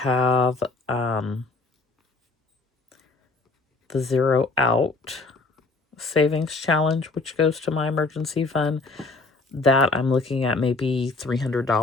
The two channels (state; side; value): quieter; right; 3.6 dB